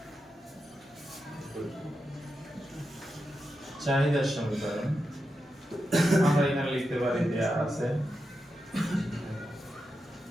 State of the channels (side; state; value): both; normal; correlation 0.88